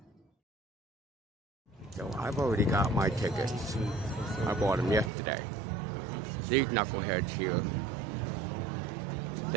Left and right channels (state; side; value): drops out; left; at 5.1 s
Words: So I've already got my tickets. I bought them yesterday. These knuckleheads here,